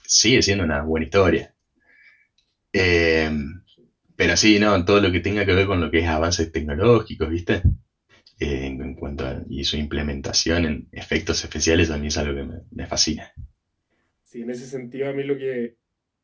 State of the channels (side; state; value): both; identical; correlation 1.00